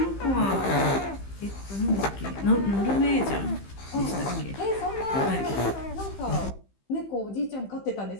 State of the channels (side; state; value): right; late; 15 ms